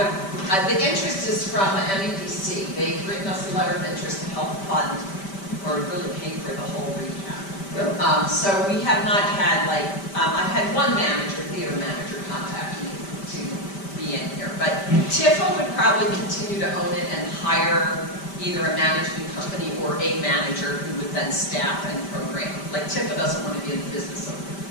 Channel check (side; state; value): right; late; 5.1 ms